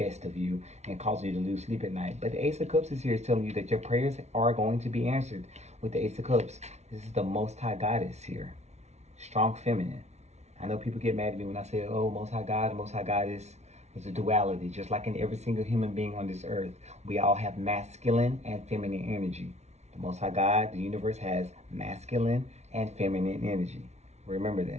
of you and causing you to lose sleep at night. But the Ace of Cups is here is telling you that your prayers are going to be answered with the Ace of Cups. This is the Most High Goddess here. Strong feminine. I know people get mad at me when I say, oh, Most High God, Most High Goddess. It's a duality. Just like in every single human being on this earth, we all have masculine and feminine energy. The Most High God, the universe, has masculine and feminine energy. Remember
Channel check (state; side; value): late; left; 0.32 ms